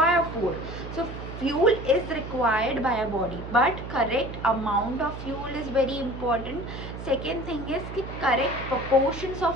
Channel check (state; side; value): noise; right; hum, 10 dB below the sound